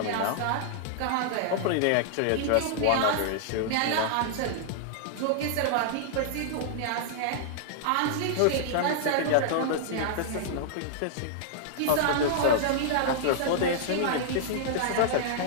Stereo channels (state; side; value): different; both; correlation -0.01